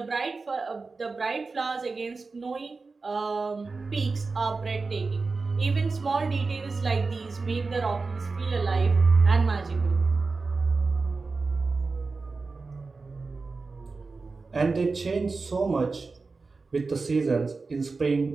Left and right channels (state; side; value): quieter; left; 4.1 dB